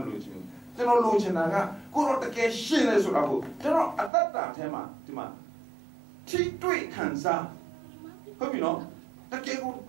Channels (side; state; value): left; drops out; at 4.1 s